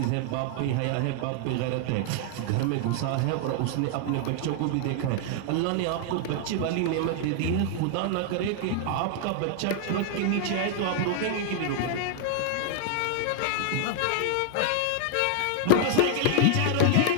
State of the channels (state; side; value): different; both; correlation 0.00